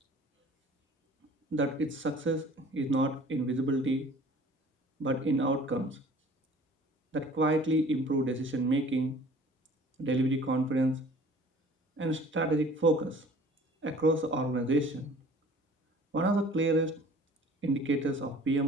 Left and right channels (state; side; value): normal; both; correlation 0.49